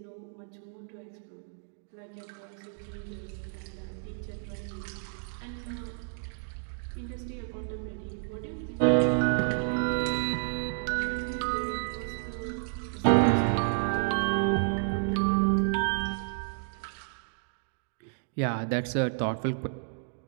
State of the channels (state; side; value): silent; left; digital silence